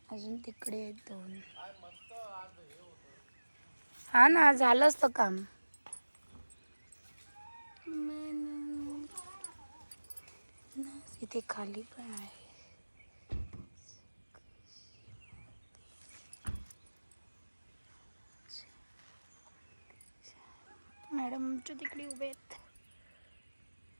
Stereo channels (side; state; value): both; inverted; correlation -1.00